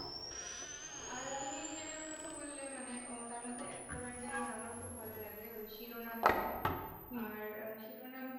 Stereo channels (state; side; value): identical; both; correlation 1.00